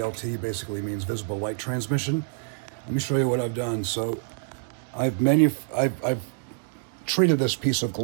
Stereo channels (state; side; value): silent; left; digital silence